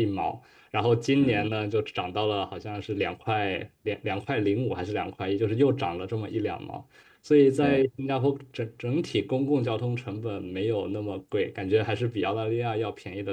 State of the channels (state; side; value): identical; both; correlation 1.00